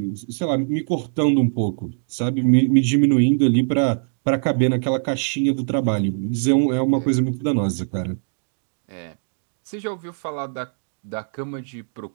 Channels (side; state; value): left; silent; digital silence